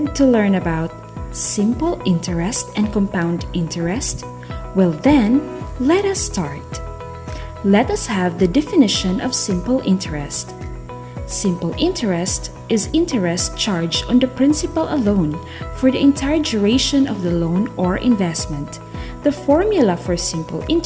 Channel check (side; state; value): both; identical; correlation 1.00